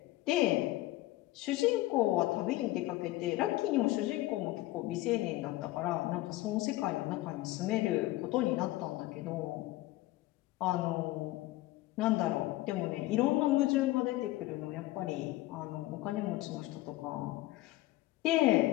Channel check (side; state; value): right; quieter; 17.6 dB